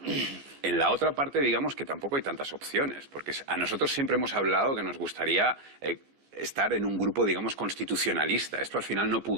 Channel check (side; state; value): left; late; 14 ms